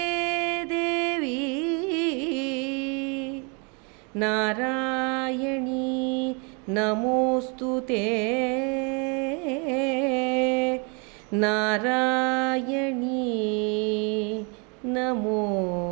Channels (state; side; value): quieter; left; 34.5 dB